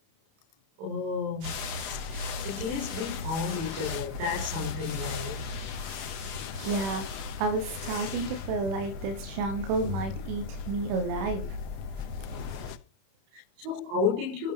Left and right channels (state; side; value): late; left; 31 ms